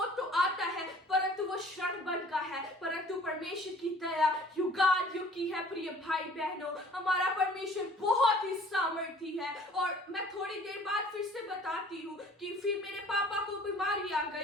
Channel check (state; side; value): normal; both; correlation 0.52